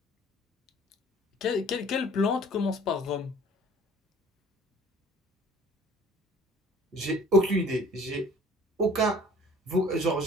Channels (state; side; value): normal; both; correlation 0.51